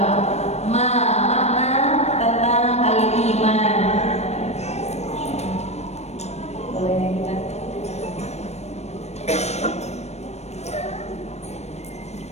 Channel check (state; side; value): late; right; 0.31 ms